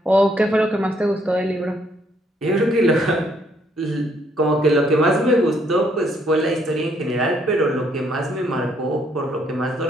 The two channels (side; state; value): both; normal; correlation 0.69